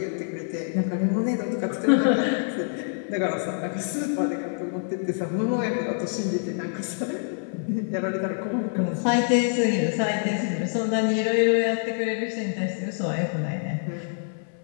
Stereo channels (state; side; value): silent; right; 59 dB below the other